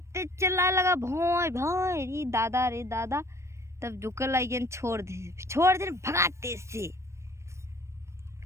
चिल्लाए लगा भोय भोय रे दादा। तब झुके लगे छोड़ दे भगाते से।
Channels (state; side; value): late; left; 0.13 ms